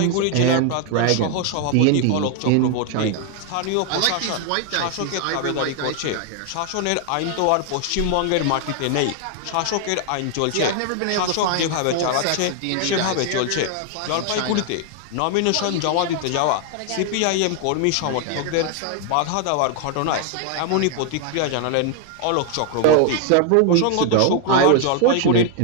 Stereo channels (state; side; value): different; both; correlation 0.00